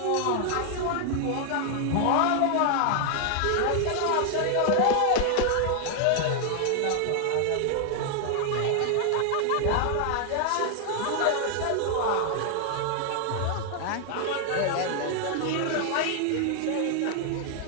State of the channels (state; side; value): different; both; correlation 0.00